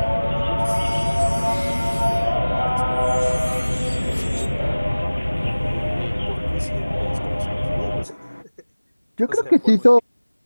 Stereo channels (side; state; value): both; inverted; correlation -1.00